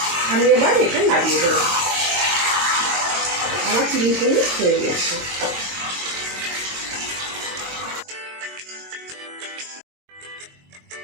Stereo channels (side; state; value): left; late; 22 ms